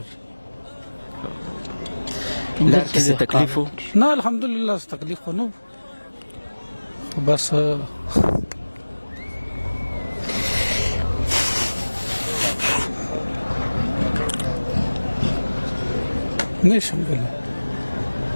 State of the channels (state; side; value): inverted; both; correlation -1.00